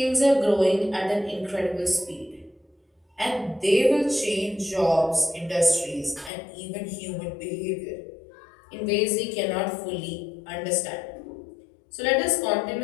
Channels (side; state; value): right; drops out; at 6.3 s